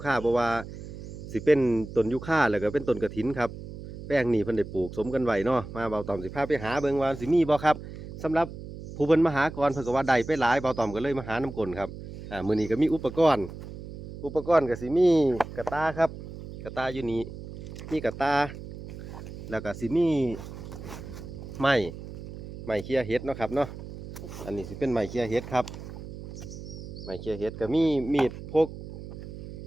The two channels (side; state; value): right; noise; hum, 11 dB below the sound